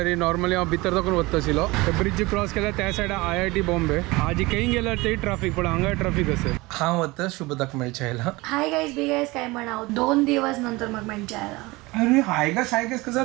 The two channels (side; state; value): left; quieter; 22.2 dB